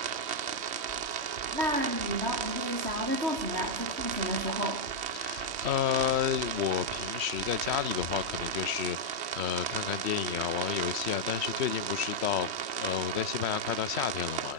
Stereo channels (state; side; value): late; left; 3.1 ms